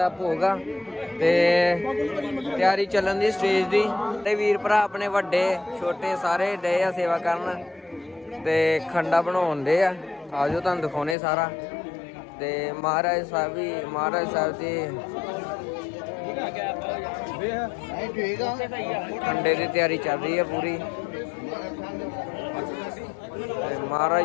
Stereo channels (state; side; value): drops out; right; at 11.2 s